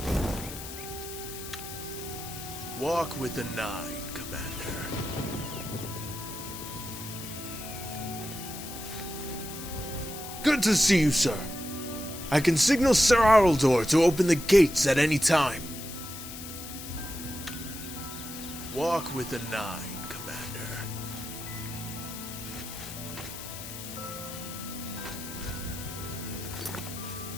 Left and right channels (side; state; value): left; noise; hiss, 10 dB below the sound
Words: Walk with the 9, Commander. Good to see you, sir. I can signal Sir Araldor to open the gates at any time. Walk with the 9, Commander.